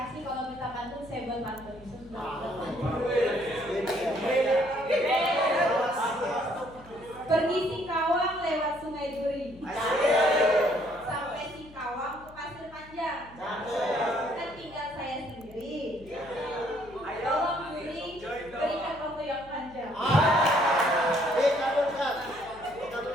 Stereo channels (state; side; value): noise; left; hum, 22 dB below the sound